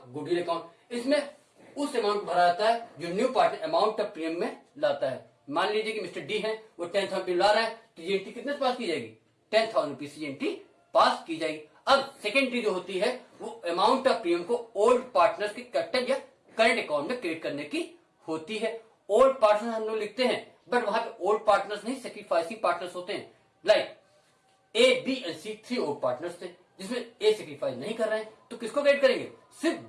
goodwill account. इसमें उस अमाउंट भरा जाता है जो new partner amount of premium में लाता है। मान लीजिए कि मिस्टर डी है, वो 10,000 रुपये ला रहा है, तो ये एंट्री कितने पास की जाएगी, 10,000 रुपीज की एंट्री पास की जाएगी। अब सेकेंड एंट्री जो होती है वो अमाउंट ऑफ प्रीमियम को ओल्ड पार्टनर्स के कैपिटल या करंट अकाउंट में क्रेडिट करने की होती है। ओल्ड पार्टनर्स हम लोग लिखते हैं, बट वहां पे ओल्ड पार्टनर्स नहीं, सेक्रीफाइसिंग पार्टनर्स होते हैं। Like A, B and C 3 old partners थे, जिसमें ए सेक्रीफाइस नहीं कर रहे हैं, तो किसको क्रेडिट करेंगे, सिर्फ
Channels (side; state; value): both; identical; correlation 1.00